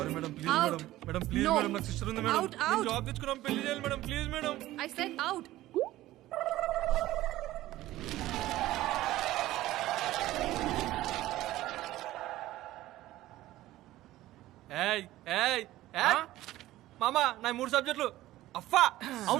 madam, please madam. Madam please madam, నాకు సిస్టర్ ఉంది మేడం. నేను జాబ్ తెచ్చుకున్నాం, పెళ్లి చేయాలి madam, please madam. I said out. ఏయ్ ఏయ్ ఏయ్ మామా, నా 3 సబ్జెక్టులు అఫ్ఫా.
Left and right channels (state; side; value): quieter; left; 15.8 dB